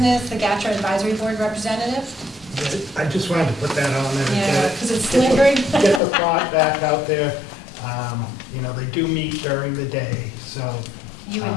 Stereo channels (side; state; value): right; drops out; at 6.0 s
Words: the GATRA Advisory Board Representative. I just wanted to put that on there. Yeah, because it's lingering. Get the thought back out there. You know, they do meet during the day, so. You